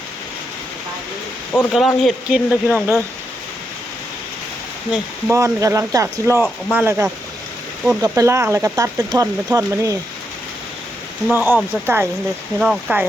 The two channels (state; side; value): normal; both; correlation 0.82